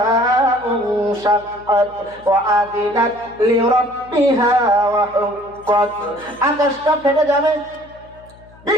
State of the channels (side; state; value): left; noise; hum, 25 dB below the sound